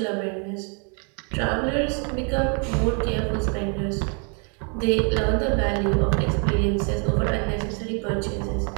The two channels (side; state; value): left; quieter; 38.8 dB